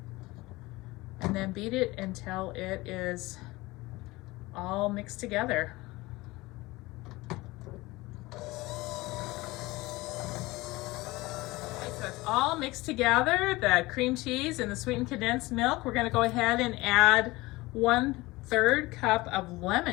And then beat it until it is all mixed together. All mixed together, the cream cheese and the sweetened condensed milk. We're going to go ahead and add 1/3 cup of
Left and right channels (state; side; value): quieter; right; 20.8 dB